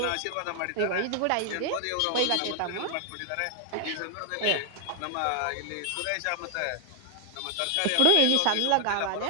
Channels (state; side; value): different; both; correlation 0.00